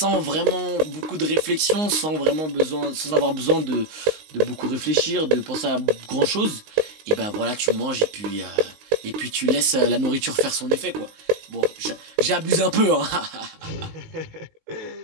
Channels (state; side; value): late; left; 19 ms